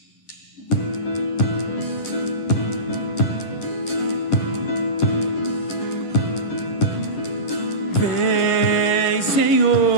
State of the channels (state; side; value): late; right; 11 ms